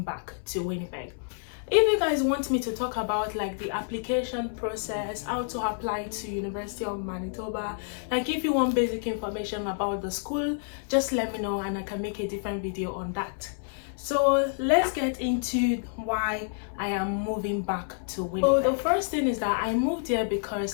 back to Winnipeg. If you guys want me to talk about like the application process, how to apply to University of Manitoba, like if you want basic information about the school, just let me know and I can make a different video on that. So let's get into why I am moving back to Winnipeg. So the first thing is that I moved here because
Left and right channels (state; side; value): silent; right; 59 dB below the other